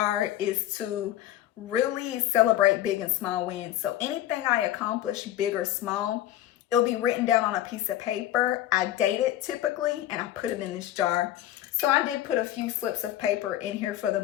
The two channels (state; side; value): quieter; right; 13.0 dB